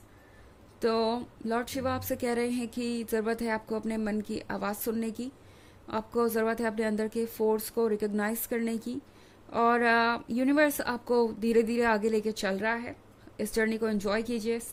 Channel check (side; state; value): both; identical; correlation 1.00